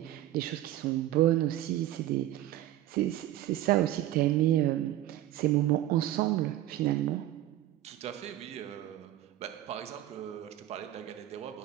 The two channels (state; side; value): quieter; left; 13.9 dB